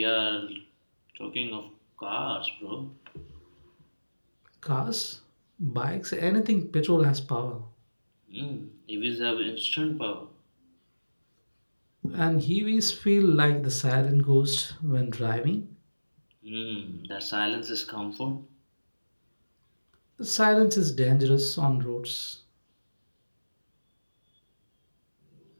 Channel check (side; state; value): both; inverted; correlation -1.00